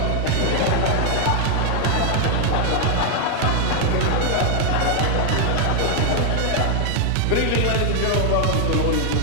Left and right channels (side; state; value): both; different; correlation 0.00